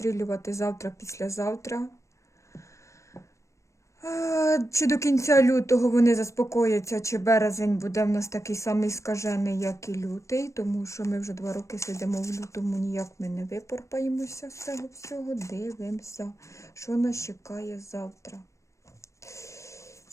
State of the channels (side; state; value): right; late; 0.15 ms